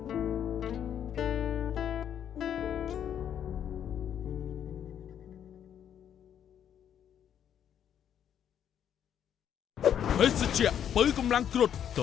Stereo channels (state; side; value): quieter; right; 9.4 dB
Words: ភេសជ្ជៈបើកម្លាំងគ្រុឌទ